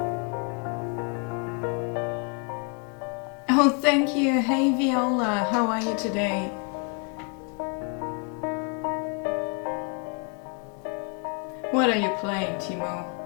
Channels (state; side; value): quieter; right; 36.6 dB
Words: Oh, thank you. Hey, Viola. How are you today? What are you playing, Timo?